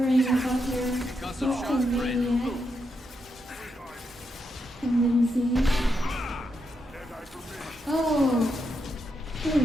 about your maniac tendencies. Oh!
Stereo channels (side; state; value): both; normal; correlation 0.82